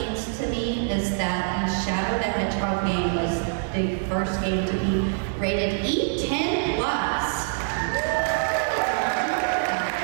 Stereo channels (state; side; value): silent; left; digital silence